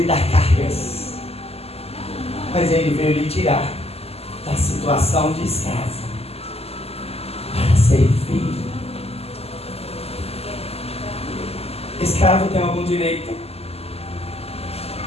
dar cargas, mas Ele veio lhe tirar da situação de escravo para ser filho. Escravo tem algum direito?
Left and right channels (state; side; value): late; right; 0.29 ms